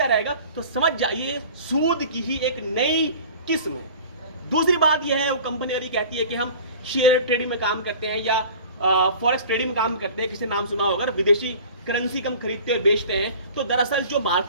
रहेगा, तो समझ जाइए सूद की ही एक नई किस्म है। दूसरी बात यह है, वो कंपनी वाली कहती है कि हम शेयर ट्रेडिंग में काम करते हैं या फॉरेक्स ट्रेडिंग में काम करते हैं, किसी नाम सुना होगा, विदेशी करेंसी कम खरीदते और बेचते हैं। तो दरअसल जो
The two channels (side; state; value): both; inverted; correlation -0.42